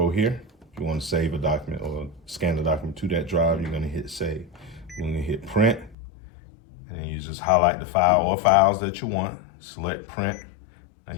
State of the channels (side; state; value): right; drops out; at 6.0 s